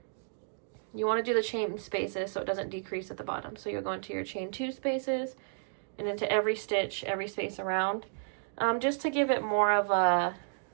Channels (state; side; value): silent; left; digital silence